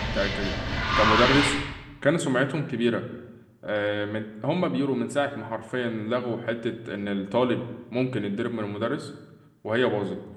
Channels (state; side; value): identical; both; correlation 1.00